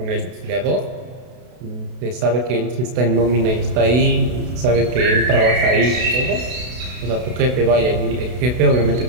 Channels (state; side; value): late; left; 32 ms